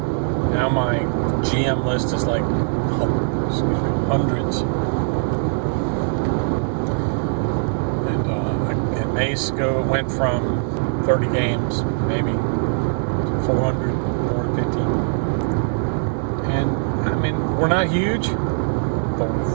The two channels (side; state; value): left; silent; 65 dB below the other